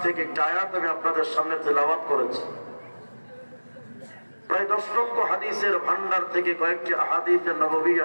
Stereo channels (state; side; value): inverted; both; correlation -1.00